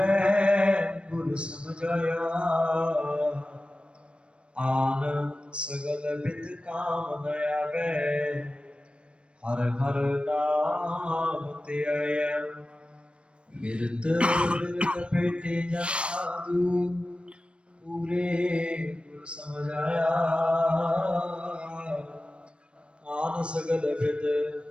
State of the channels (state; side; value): late; left; 0.059 ms